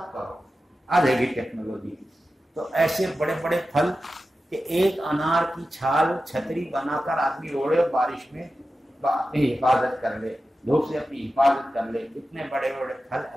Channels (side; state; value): both; normal; correlation 0.93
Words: کرو، آ جائے گی ٹیکنالوجی۔ تو ایسے بڑے بڑے پھل کہ ایک انار کی چھال چھتری بنا کر آدمی اوڑے اور بارش میں اپنی حفاظت کر لے، دھوپ سے اپنی حفاظت کر لے، اتنے بڑے بڑے پھل